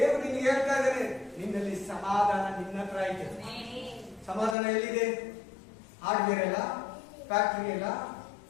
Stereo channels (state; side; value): drops out; right; at 4.5 s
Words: ನಿನ್ಗೆ ಹೇಳ್ತಾ ಇದ್ದಾನೆ, ನಿನ್ನಲ್ಲಿ ಸಮಾಧಾನ ನಿನ್ನ ಹತ್ರ ಇದೆ. ಸಮಾಧಾನ ಎಲ್ಲಿದೆ? ಹಾರ್ಡ್ವೇರ್ ಅಲ್ಲ, ಫ್ಯಾಕ್ಟರಿ ಅಲ್ಲ,